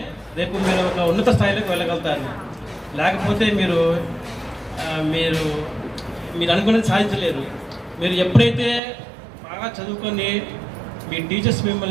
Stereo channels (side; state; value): left; drops out; at 8.8 s